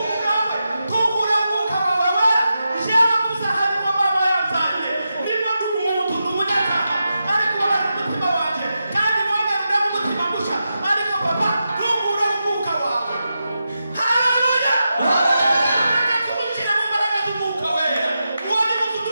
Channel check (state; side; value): inverted; both; correlation -0.89